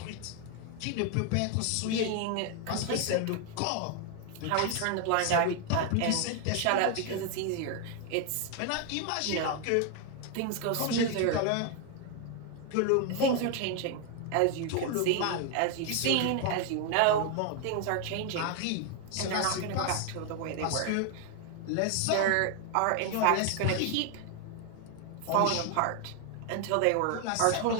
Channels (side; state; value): both; different; correlation 0.01